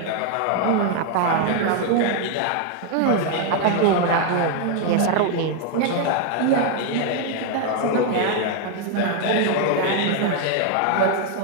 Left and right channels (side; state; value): both; different; correlation 0.00